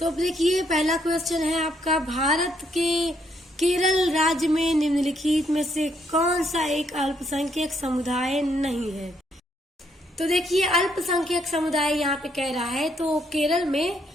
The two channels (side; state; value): both; normal; correlation 0.72